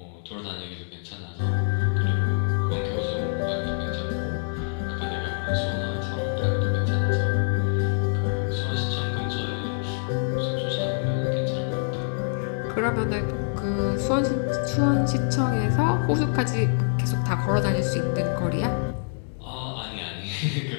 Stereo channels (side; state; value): right; silent; digital silence